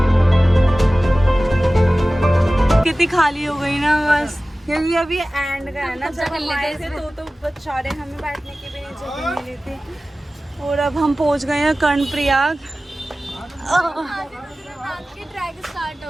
कितनी खाली हो गई ना बस, क्योंकि अभी एंड का है ना, जब हम आए थे तो बेचारे हमें बैठने की भी नहीं जगह मिली थी। और अब हम पहुंच गए हैं कर्णप्रयाग। की ट्रैक स्टार्ट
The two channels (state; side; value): normal; both; correlation 0.97